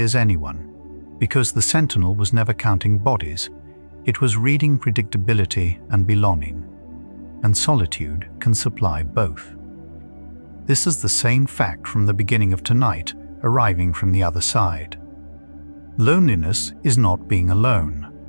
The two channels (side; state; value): both; inverted; correlation -1.00